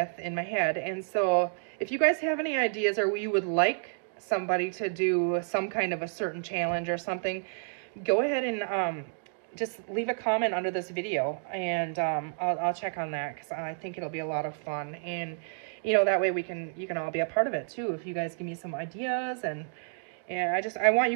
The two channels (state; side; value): silent; left; digital silence